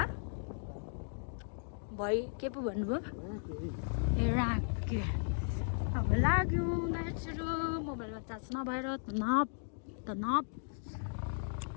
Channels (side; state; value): right; silent; digital silence